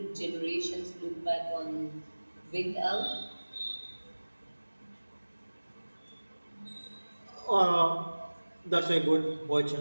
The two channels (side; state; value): both; inverted; correlation -1.00